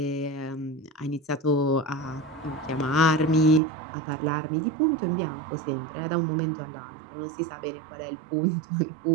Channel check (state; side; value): drops out; left; at 3.6 s